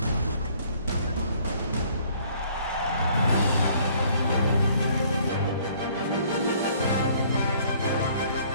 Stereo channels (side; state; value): both; inverted; correlation -0.59